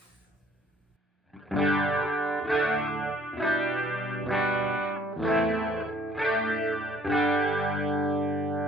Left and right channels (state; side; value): normal; both; correlation 0.60